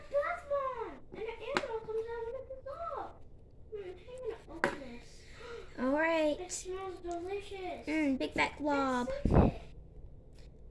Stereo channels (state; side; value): identical; both; correlation 1.00